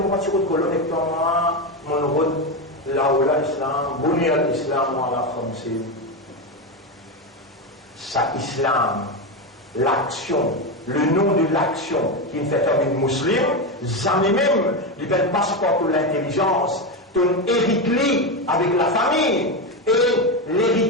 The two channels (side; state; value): both; normal; correlation 0.13